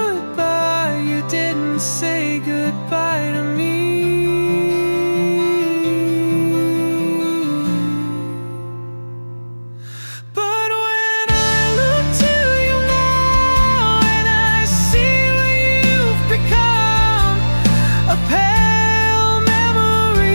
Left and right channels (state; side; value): inverted; both; correlation -1.00